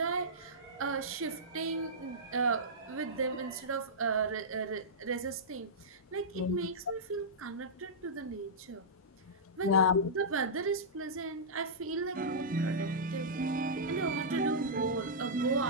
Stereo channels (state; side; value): normal; both; correlation -0.14